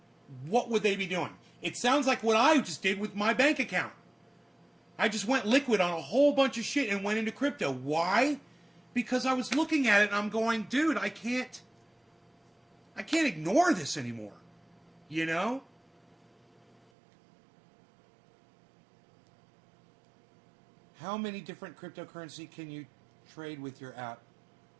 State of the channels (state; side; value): drops out; left; at 16.8 s